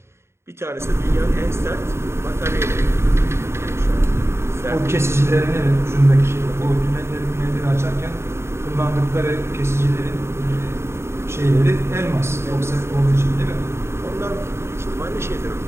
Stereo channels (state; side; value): late; left; 0.13 ms